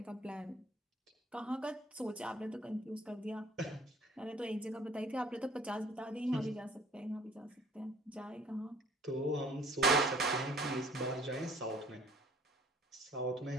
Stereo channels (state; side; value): normal; both; correlation 0.55